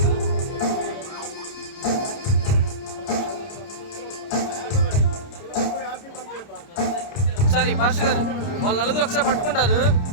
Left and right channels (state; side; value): late; right; 29 ms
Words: ఒకసారి పాస్టర్ గారు వాళ్ళు నలుగురు ఒకసారి పట్టుకుంటారు.